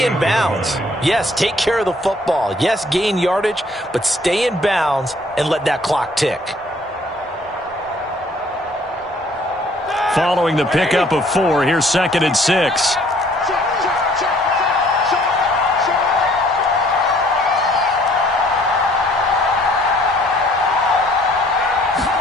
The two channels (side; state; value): both; normal; correlation 0.59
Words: in bounds. Yes, take care of the football. Yes, gain yardage, but stay in bounds and let that clock tick. Following the pickup of 4, here's 2nd and 6.